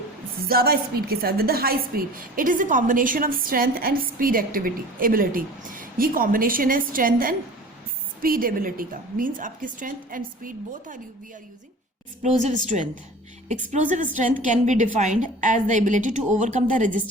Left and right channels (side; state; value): both; normal; correlation 0.41